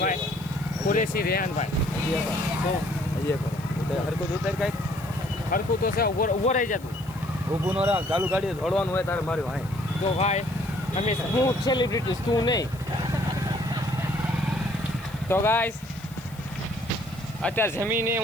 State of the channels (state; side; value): noise; left; hiss, 23 dB below the sound